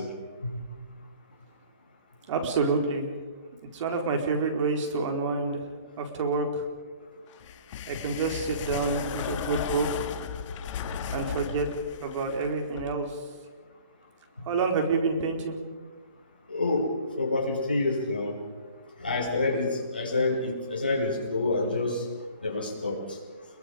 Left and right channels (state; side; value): inverted; both; correlation -0.48